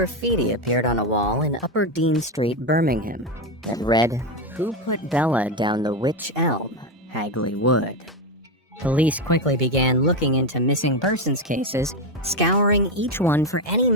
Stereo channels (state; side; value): normal; both; correlation 0.11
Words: appeared on a wall in Upper Dean Street, Birmingham, that read, "Who put Bella down the wych elm, Hagley Wood?" Police quickly began looking into missing persons cases, scouring each one for any